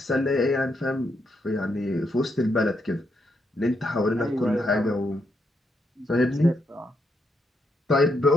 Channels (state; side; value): normal; both; correlation 0.79